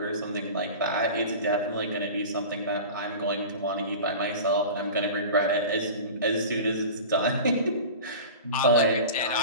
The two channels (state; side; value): inverted; both; correlation -0.34